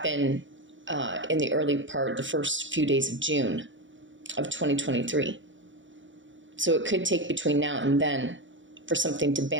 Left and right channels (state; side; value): late; left; 0.55 ms